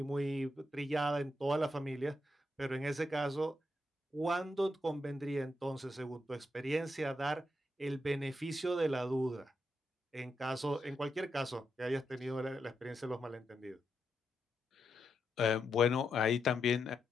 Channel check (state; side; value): normal; both; correlation 0.83